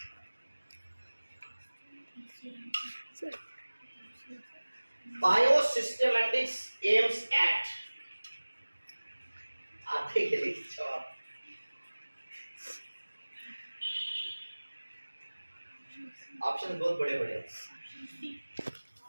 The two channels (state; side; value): inverted; both; correlation -1.00